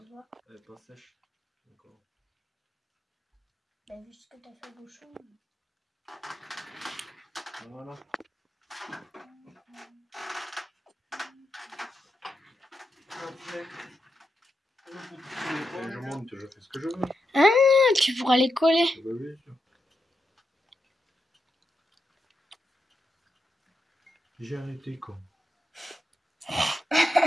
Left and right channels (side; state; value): both; normal; correlation 0.85